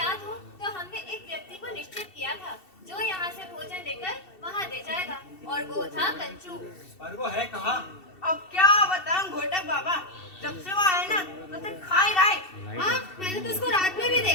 हो तो हमने एक व्यक्ति को निश्चित किया था जो यहाँ से भोजन लेकर वहाँ दे जाएगा, और वो था कंचू। पर वो है कहाँ? अब क्या बताऊं घोटक बाबा, जब से वो आए ना तो सिर्फ खा ही रहा है। हाँ, मैंने तो उसको रात में भी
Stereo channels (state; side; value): late; right; 2.7 ms